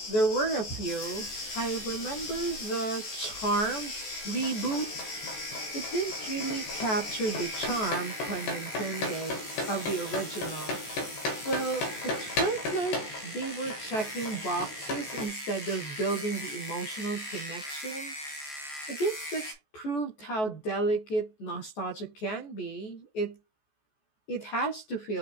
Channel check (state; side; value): late; right; 14 ms